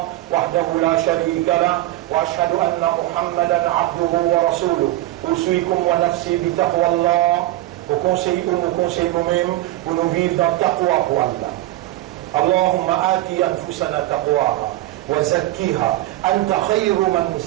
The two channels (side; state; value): left; quieter; 16.3 dB